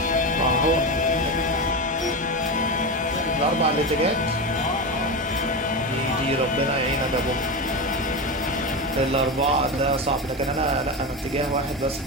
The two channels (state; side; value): normal; both; correlation 0.18